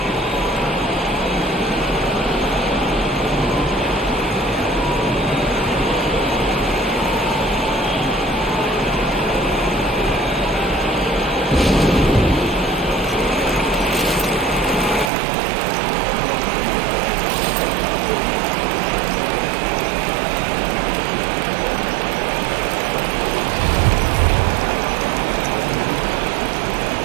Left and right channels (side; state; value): left; drops out; at 15.1 s